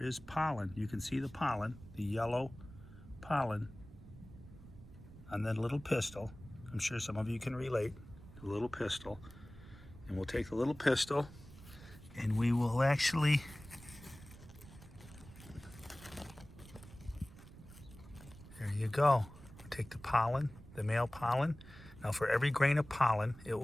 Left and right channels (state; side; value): noise; right; rumble, 18 dB below the sound